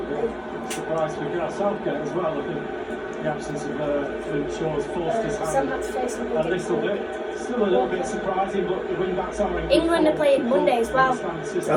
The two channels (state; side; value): identical; both; correlation 1.00